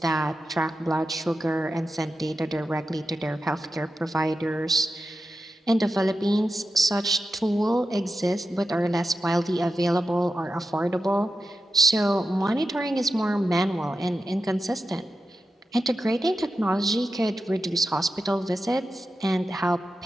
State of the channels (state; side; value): normal; both; correlation 0.90